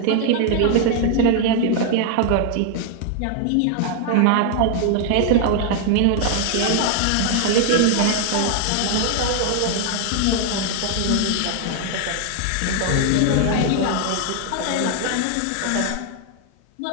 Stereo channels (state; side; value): different; both; correlation 0.00